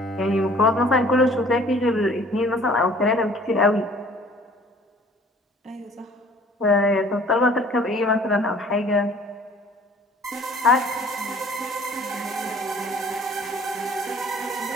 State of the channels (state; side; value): normal; both; correlation 0.53